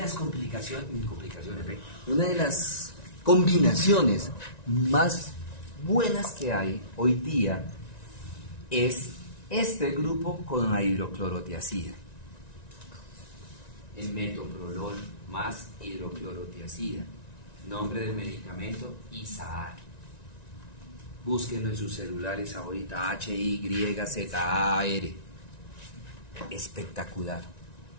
una de las combinaciones más buenas que hay hoy día es este grupo con la hidroclorotiazida. El metoprolol más hidroclorotiazida. Nombre del medicamento, Isaar. Búsquenlo en sus celulares ahorita, HYZAR. Espectacular.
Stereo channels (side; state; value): right; late; 1.9 ms